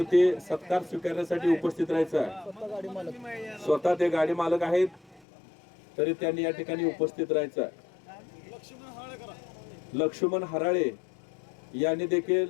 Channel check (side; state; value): right; drops out; at 5.2 s